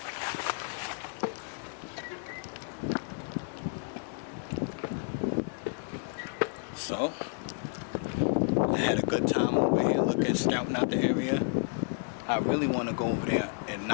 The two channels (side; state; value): right; silent; 57 dB below the other